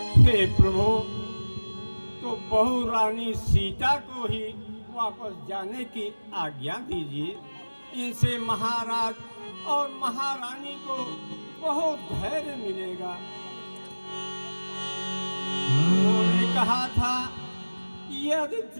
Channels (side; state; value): both; inverted; correlation -1.00